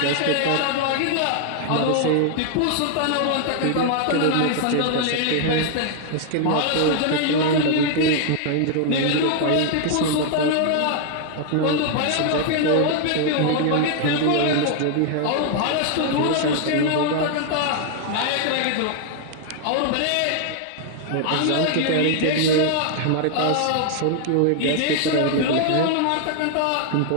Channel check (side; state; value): both; different; correlation 0.00